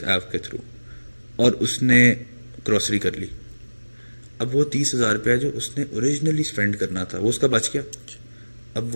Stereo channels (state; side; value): inverted; both; correlation -1.00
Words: ایپ کے تھرو اور اس نے گروسری کر لی. اب وہ 30,000 روپیہ جو اس نے اوریجنلی اسپینڈ کرنا تھا وہ اس کا بچ گیا. اب